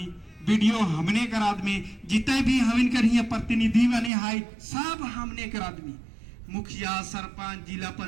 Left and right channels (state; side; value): drops out; left; at 4.1 s